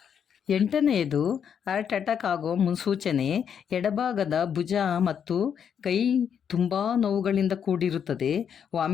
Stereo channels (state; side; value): quieter; right; 7.9 dB